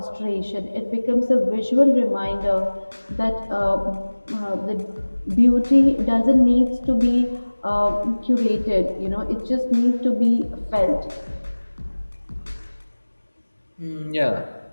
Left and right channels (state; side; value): inverted; both; correlation -1.00